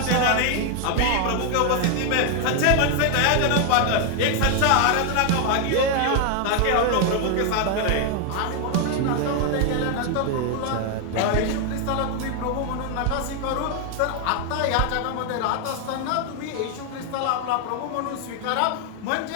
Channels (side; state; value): both; different; correlation 0.00